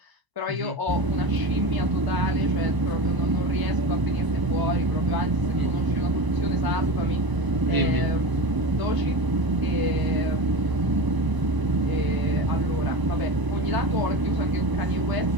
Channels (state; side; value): late; left; 1.0 ms